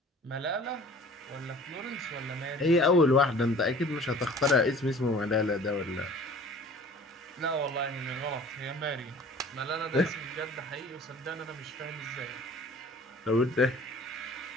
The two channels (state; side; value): normal; both; correlation 0.47